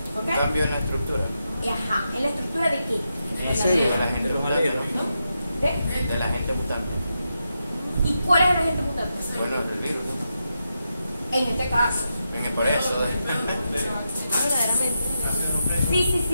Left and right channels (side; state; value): both; inverted; correlation -0.86